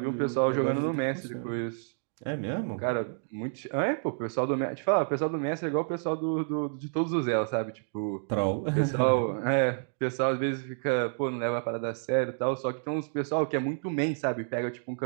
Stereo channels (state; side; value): silent; left; digital silence